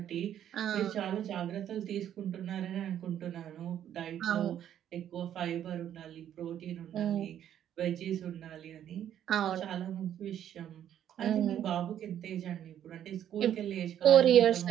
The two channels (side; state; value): left; quieter; 10.4 dB